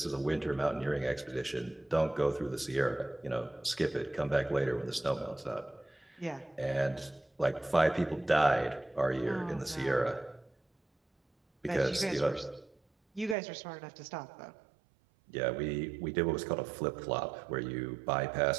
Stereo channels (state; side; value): drops out; left; at 13.4 s